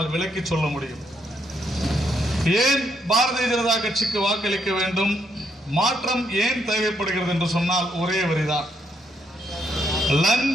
விளக்கி சொல்ல முடியும். ஏன் பாரதிய ஜனதா கட்சிக்கு வாக்களிக்க வேண்டும், மாற்றம் ஏன் தேவைப்படுகிறது என்று சொன்னால் ஒரே வரிதான்.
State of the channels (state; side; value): normal; both; correlation 0.76